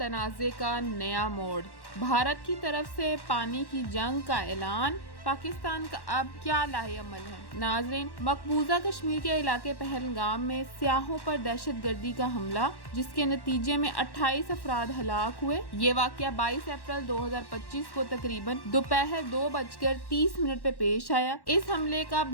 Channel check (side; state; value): right; late; 1.1 ms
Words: का नया मोड़, भारत की तरफ से पानी की जंग का ऐलान, पाकिस्तान का अब क्या लाहेअमल है। नाज़रीन, मकबूजा कश्मीर के इलाके पहलगाम में सियाहों पर दहशतगर्दी का हमला, जिसके नतीजे में 28 अफराद हलाक हुए। ये वाक़या 22 अप्रैल 2025 को तकरीबन दोपहर 2:30 पे पेश आया। इस हमले का